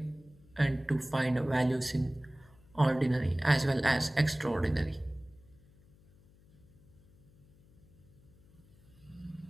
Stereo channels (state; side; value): noise; left; hum, 27 dB below the sound